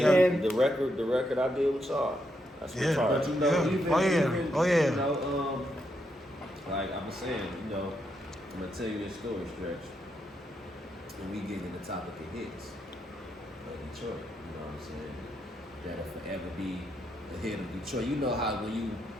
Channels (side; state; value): both; normal; correlation 0.80